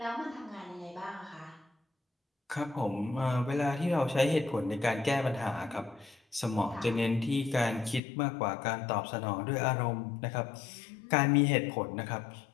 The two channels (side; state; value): right; drops out; at 8.0 s